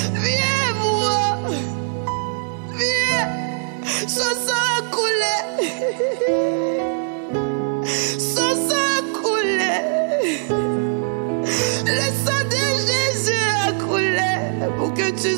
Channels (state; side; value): silent; left; 62 dB below the other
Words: Viens voir. Viens. Son sang a coulé. Son sang a coulé. Le sang de Jésus a coulé pour que tu